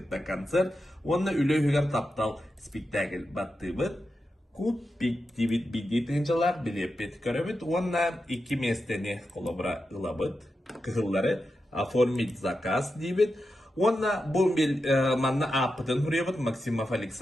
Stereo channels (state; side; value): normal; both; correlation 0.89